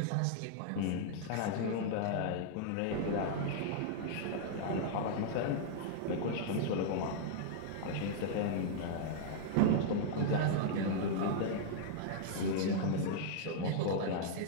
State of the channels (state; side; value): different; both; correlation -0.01